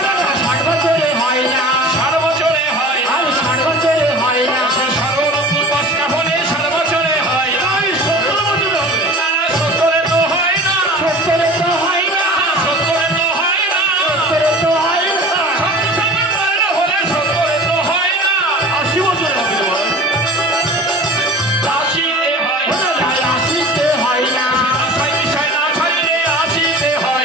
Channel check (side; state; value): both; normal; correlation 0.40